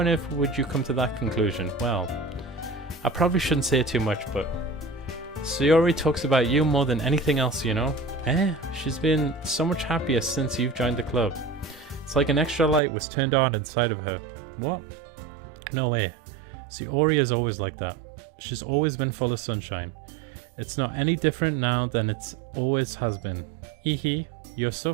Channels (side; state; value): left; drops out; at 12.8 s